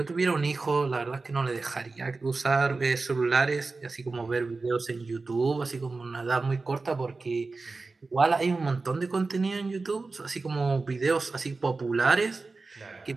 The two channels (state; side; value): quieter; left; 3.8 dB